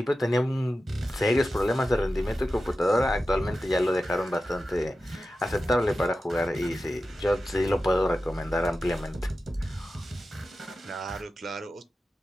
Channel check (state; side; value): normal; both; correlation 0.93